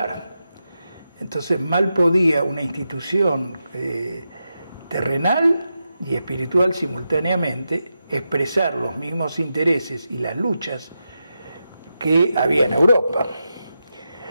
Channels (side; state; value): both; inverted; correlation -0.88